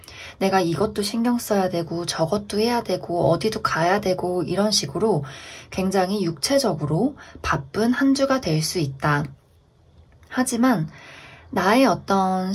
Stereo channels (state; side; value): identical; both; correlation 1.00